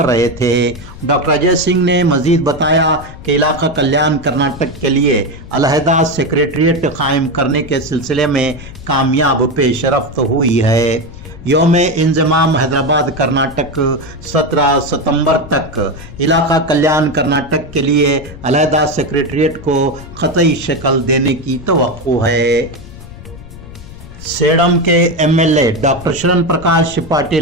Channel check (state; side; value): noise; left; rumble, 16 dB below the sound